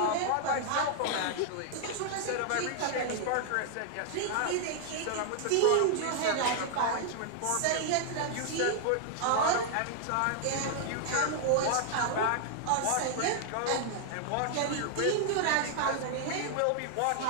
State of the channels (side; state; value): both; different; correlation -0.01